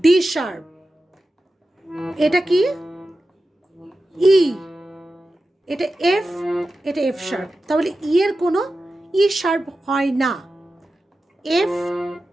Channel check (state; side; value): normal; both; correlation 0.93